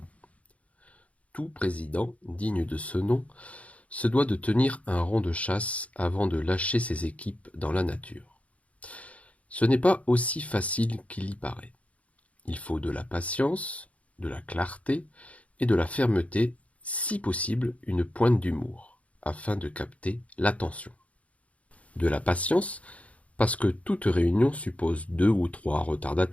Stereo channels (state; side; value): late; right; 0.066 ms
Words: Tout président, digne de ce nom, se doit de tenir un rond de chasse avant de lâcher ses équipes dans la nature. Ce n'est pas aussi facile qu'il y paraît. Il faut de la patience, de la clarté et de la fermeté, si possible une pointe d'humour, afin de capter l'attention. De la patience, parce que toute réunion suppose 2 ou 3